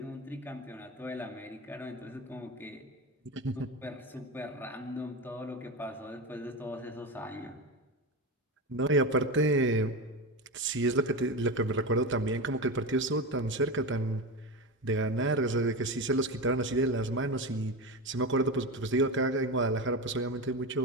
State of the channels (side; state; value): both; normal; correlation 0.20